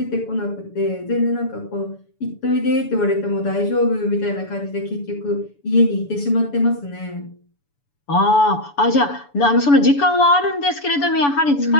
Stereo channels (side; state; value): right; late; 7.0 ms